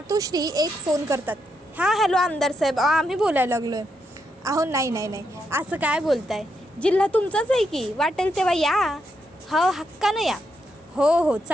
एक फोन करतात. हां हॅलो आमदार साहेब, आम्ही बोलायला लागलो आहे. अहो नाही नाही नाही, असं काय बोलताय, जिल्हा तुमचाच आहे की, वाटेल तेव्हा या. हो हक्कानं या. हो हो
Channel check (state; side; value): normal; both; correlation 0.81